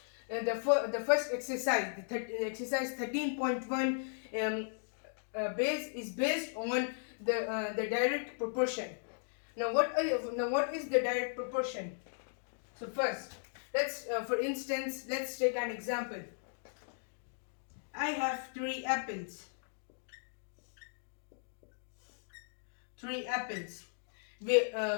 the first exercise, exercise 13.1, is based on the direct proportion. Now what is the direct proportion? So first, for instance, let's take an example. I have three apples. Three apples, which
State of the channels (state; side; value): silent; right; digital silence